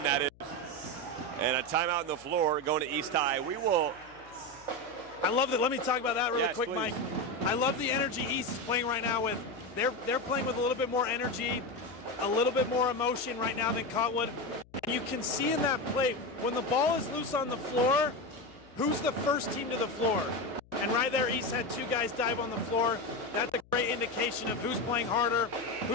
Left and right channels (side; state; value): left; noise; hum, 26 dB below the sound